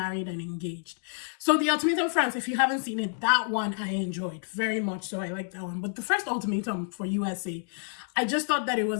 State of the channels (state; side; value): silent; right; digital silence